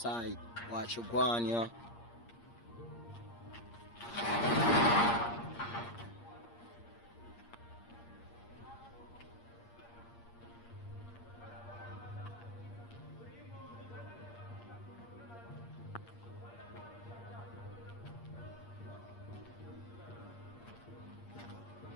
Watch your go on, yeah.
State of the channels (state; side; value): late; right; 8.6 ms